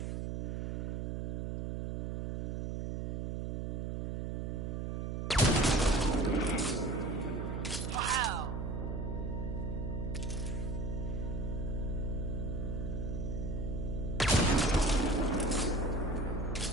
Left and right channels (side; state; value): right; noise; hum, 1 dB below the sound